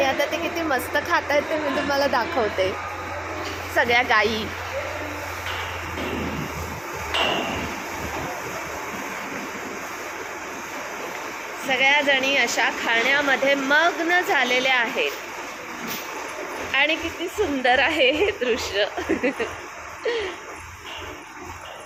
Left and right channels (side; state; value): left; noise; hum, 28 dB below the sound